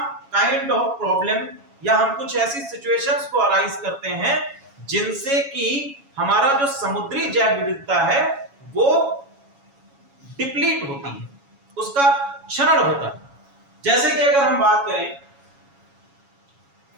kind of problem, या हम कुछ ऐसी सिचुएशंस को अराइज करते हैं जिनसे कि हमारा जो समुद्री जैव विविधता है वो डिप्लीट होती है, उसका क्षरण होता है। जैसे कि अगर हम बात करें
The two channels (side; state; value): left; late; 7.2 ms